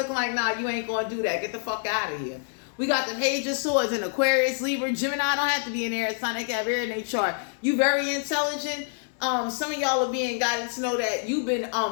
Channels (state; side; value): silent; right; digital silence